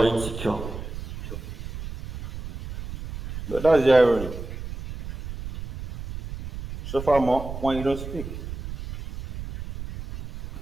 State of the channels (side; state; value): right; noise; rumble, 10 dB below the sound